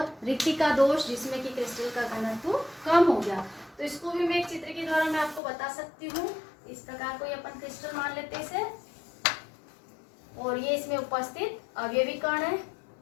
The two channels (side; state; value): right; drops out; at 5.4 s